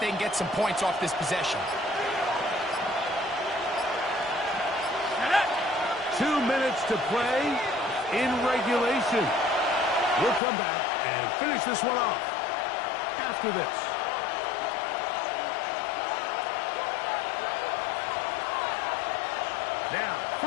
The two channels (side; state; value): right; drops out; at 10.4 s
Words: can get some points off this possession. 2 minutes to play in regulation. We'll come back and finish this one off after this. Now,